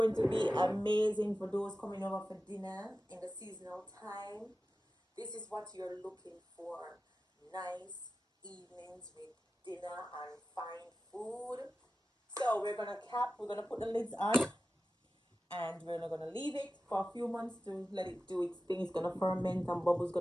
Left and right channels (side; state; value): both; normal; correlation 0.94